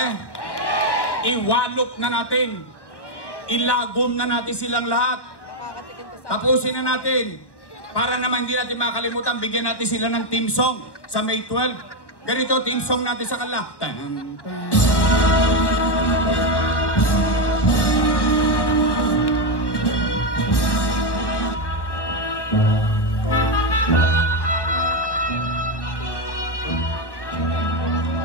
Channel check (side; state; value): right; late; 1.1 ms